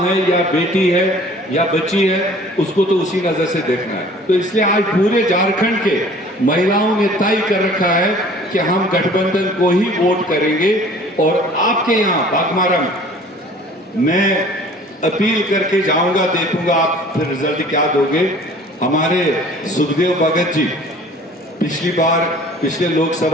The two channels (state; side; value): normal; both; correlation 0.50